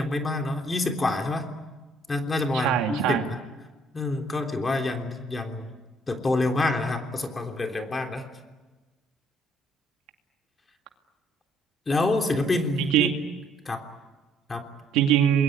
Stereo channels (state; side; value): normal; both; correlation 0.64